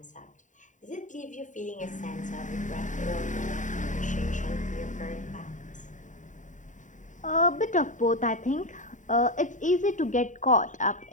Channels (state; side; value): late; right; 0.36 ms